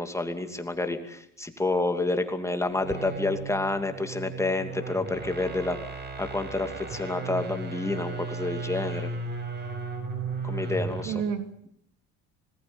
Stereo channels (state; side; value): normal; both; correlation 0.63